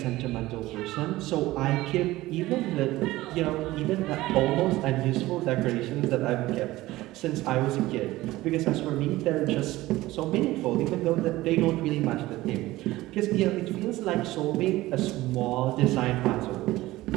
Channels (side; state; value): left; quieter; 17.6 dB